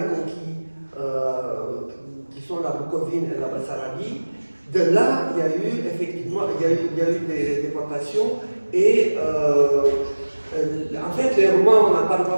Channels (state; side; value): inverted; both; correlation -1.00